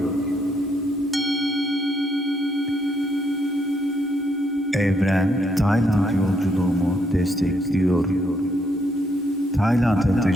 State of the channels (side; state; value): both; normal; correlation 0.74